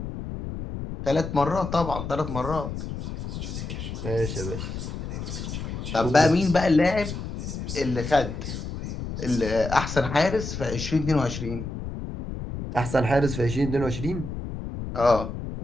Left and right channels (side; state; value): left; noise; rumble, 7 dB below the sound